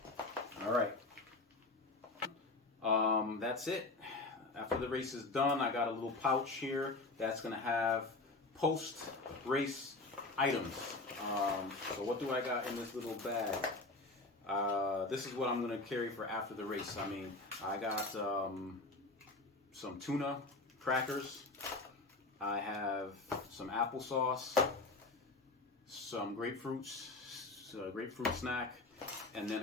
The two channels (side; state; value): right; quieter; 3.3 dB